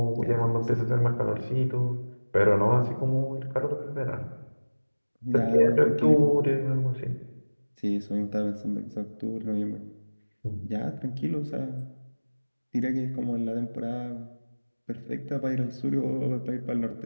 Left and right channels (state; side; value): inverted; both; correlation -1.00